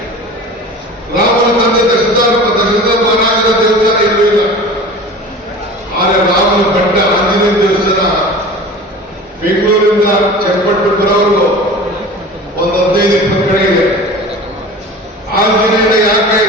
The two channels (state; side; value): normal; both; correlation 0.37